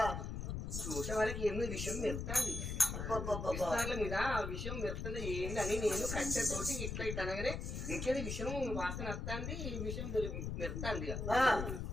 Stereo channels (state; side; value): noise; left; rumble, 4 dB below the sound